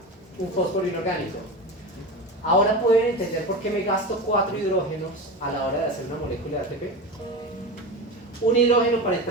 un fósforo inorgánico. Ahora pueden entender por qué me gasto 4 hidrógenos a la hora de hacer una molécula de ATP. Un hidrógeno para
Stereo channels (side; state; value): both; normal; correlation 0.25